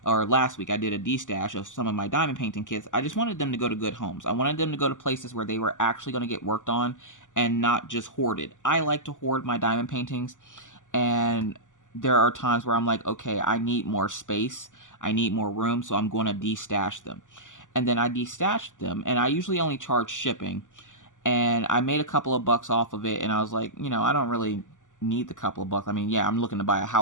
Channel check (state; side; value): late; right; 0.87 ms